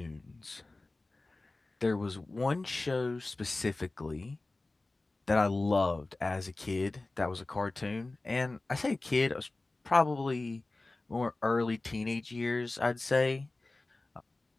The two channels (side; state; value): right; quieter; 3.1 dB